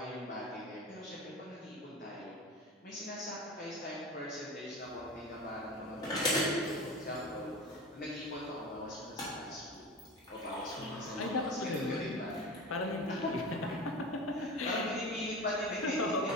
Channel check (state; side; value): normal; both; correlation 0.31